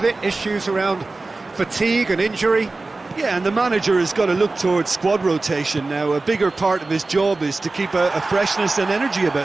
it issues around fatigue and injury. Yeah, and the manager has got to look towards squad rotation now. A bigger part of his job is to keep a freshness and energy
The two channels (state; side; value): quieter; left; 3.4 dB